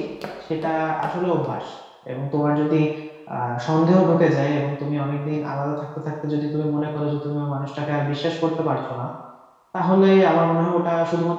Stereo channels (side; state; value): both; identical; correlation 1.00